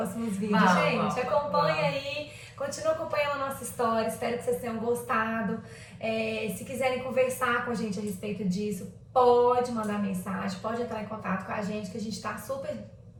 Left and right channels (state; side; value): identical; both; correlation 1.00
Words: vídeos, gente. Acompanha aí, continua acompanhando a nossa história, espero que vocês tenham gostado. Se quiserem conversar com a gente a respeito disso, pode mandar mensagem, pode entrar em contato com a gente, que a gente está super